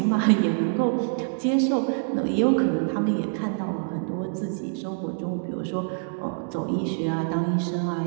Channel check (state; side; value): silent; left; digital silence